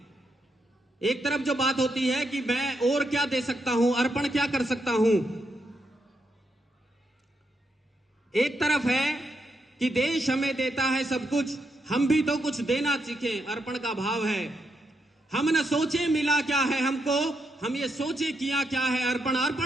एक तरफ जो बात होती है कि मैं और क्या दे सकता हूं, अर्पण क्या कर सकता हूं। एक तरफ है कि देश हमें देता है सब कुछ, हम भी तो कुछ देना सीखें, अर्पण का भाव है। हम न सोचे मिला क्या है हमको, हम ये सोचे किया क्या है, अर्पण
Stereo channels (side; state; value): both; normal; correlation 0.81